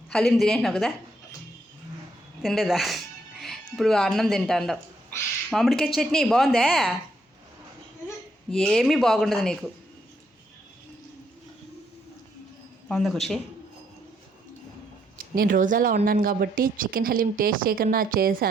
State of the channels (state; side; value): normal; both; correlation 0.74